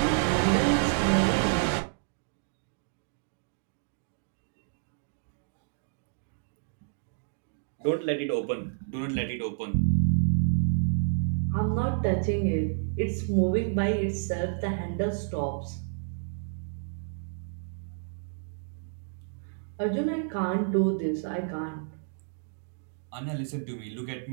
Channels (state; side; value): silent; left; digital silence